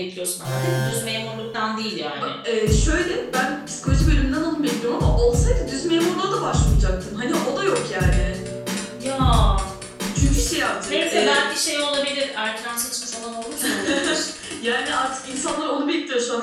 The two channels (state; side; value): identical; both; correlation 1.00